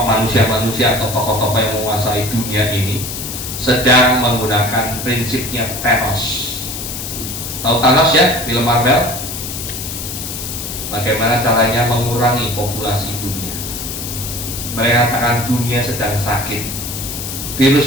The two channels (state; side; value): noise; left; hiss, 7 dB below the sound